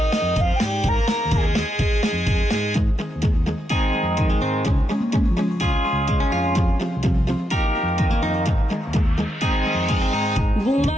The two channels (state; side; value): normal; both; correlation 0.83